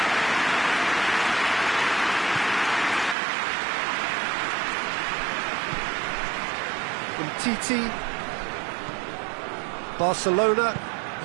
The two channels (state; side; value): drops out; left; at 3.2 s